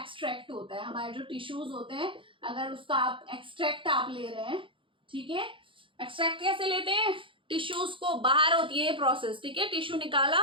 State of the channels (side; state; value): left; late; 0.25 ms